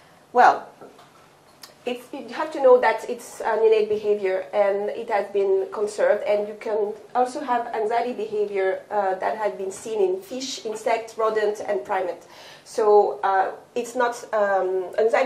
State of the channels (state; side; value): identical; both; correlation 1.00